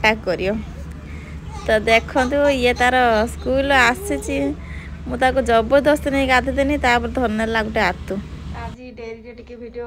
करियो तो देखो ये तार स्कूल आसी मुझे जबरदस्त नहीं गाधेदेनी धरनेला गोटे आतु आज डेरी टे वीडियो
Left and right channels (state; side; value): identical; both; correlation 1.00